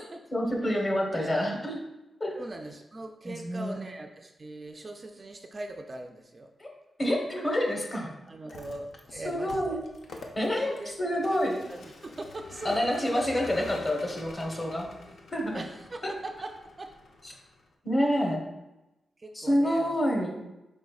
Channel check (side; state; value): both; normal; correlation 0.91